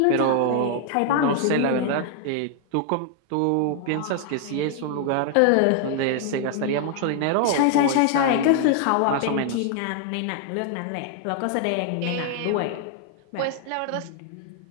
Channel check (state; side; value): different; both; correlation 0.00